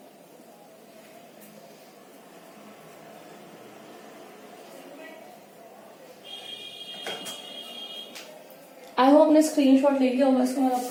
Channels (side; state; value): both; identical; correlation 1.00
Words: आई होप आपने स्क्रीनशॉट ले लिया होगा, इसको मैं अब